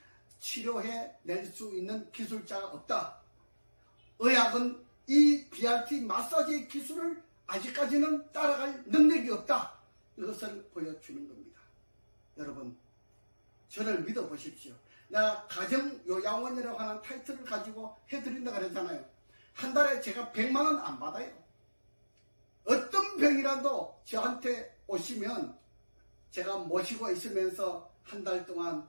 치료해 낼 수 있는 기술자가 없다. 의학은 이 BRT 마사지 기술을 아직까지는 따라갈 능력이 없다. 이것을 보여주는 겁니다. 여러분, 저를 믿어보십시오. 내가 가정요양원이라고 하는 타이틀을 가지고 해드린다 그랬잖아요. 한 달에 제가 100만 원 안 받아요. 어떤 병이라도 저한테 오시면 제가 모시고 있으면서 한 달 동안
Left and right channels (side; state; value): both; inverted; correlation -1.00